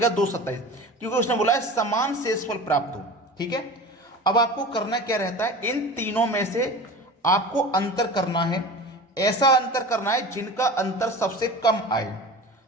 227, क्योंकि उसने बोला है समान शेषफल प्राप्त हो। ठीक है, अब आपको करना क्या रहता है, इन तीनों में से आपको अंतर करना है, ऐसा अंतर करना है जिनका अंतर सबसे कम आए।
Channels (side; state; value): both; normal; correlation 0.34